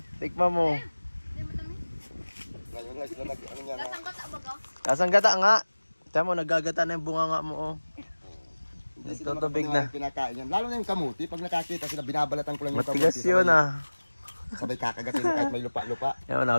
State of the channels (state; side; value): inverted; both; correlation -1.00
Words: Tikman mo. Hindi mo tamis. Ngayon lang sila ano yan. Lasang gata ba ka? Kasang gata nga. Tiyan mo, nagagata na yung bunga nga mo oh. Hindi sila Nagtutubig makapaniwala na. pinakain yan. Lalo na yung kamuti. Pag nakakita sila, binabalatan ko lang yung Matigas kamuti. yun ah. Sabay kakagatin kahit may lupa-lupa. Yan,